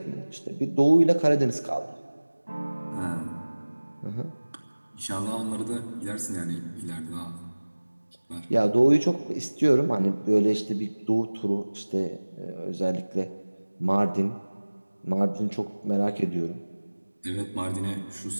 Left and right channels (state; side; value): inverted; both; correlation -1.00